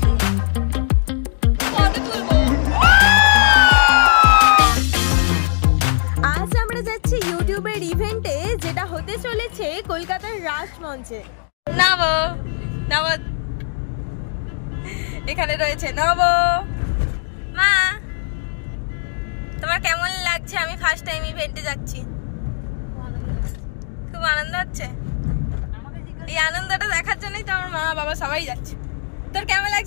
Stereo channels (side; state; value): right; silent; digital silence